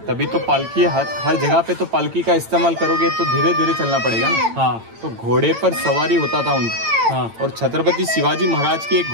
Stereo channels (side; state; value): left; late; 8.9 ms